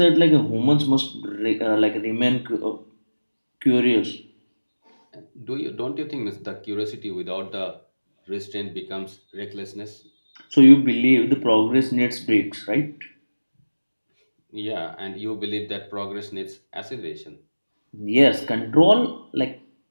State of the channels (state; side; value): inverted; both; correlation -1.00